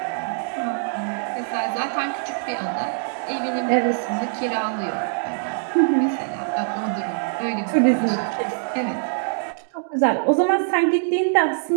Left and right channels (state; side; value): silent; left; digital silence